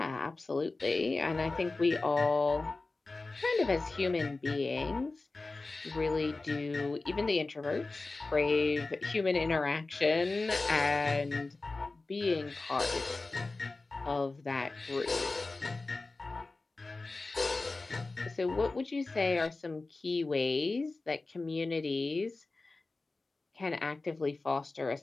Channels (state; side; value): quieter; right; 3.4 dB